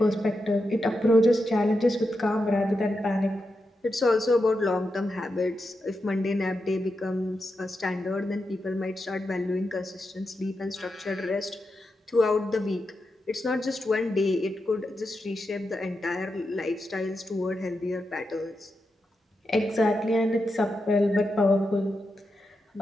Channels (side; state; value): both; normal; correlation 0.87